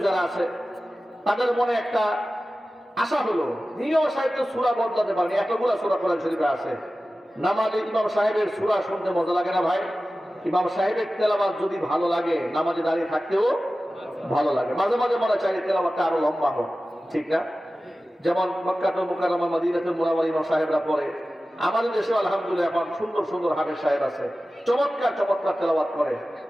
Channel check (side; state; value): both; normal; correlation 0.95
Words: যারা আছে, তাদের মনে একটা আশা হলো, ইমাম সাহেব তো সূরা বদলাতে পারেনি, এতগুলো সূরা কোরআন শরীফে আছে, নামাজে ইমাম সাহেবের সূরা শুনতে মজা লাগে না ভাই? ইমাম সাহেবের তেলাওয়াত যদি ভালো লাগে, নামাজে দাঁড়িয়ে থাকতেও ভালো লাগে। মাঝে মাঝে মনে চাই তেলাওয়াতটা আরো লম্বা হোক, ঠিক না? যেমন মক্কাতুল মুকাররমা, মদিনাতুল মুনাওয়ারা ইমাম সাহেবরা পড়ে। আমাদের দেশে আলহামদুলিল্লাহ এখন সুন্দর সুন্দর হাফেজ সাহেব আছে, চমৎকার চমৎকার তেলাওয়াত করে।